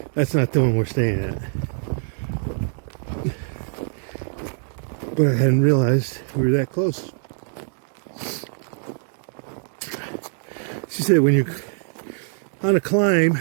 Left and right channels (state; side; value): silent; left; digital silence